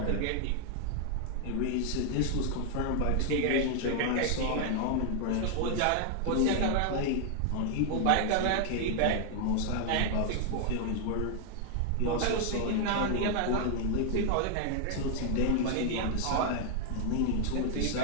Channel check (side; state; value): both; different; correlation 0.00